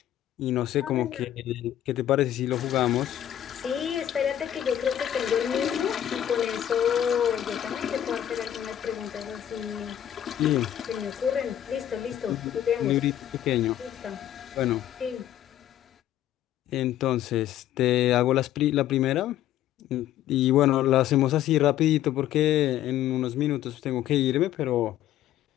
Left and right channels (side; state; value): right; quieter; 11.6 dB